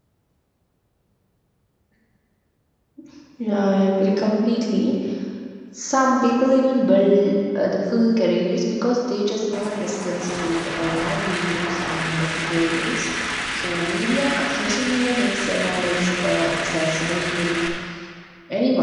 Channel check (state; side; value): identical; both; correlation 1.00